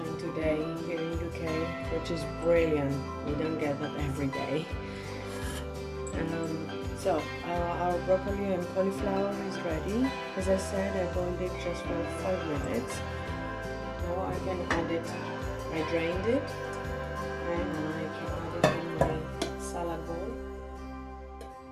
today here in UK, which is brilliant. We don't get that every day. So our broccoli and cauliflower is ready. As I said, I boiled it just for 5 minutes. Now I can add it. I drained it, and I can add it in my salad bowl.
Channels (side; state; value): both; identical; correlation 1.00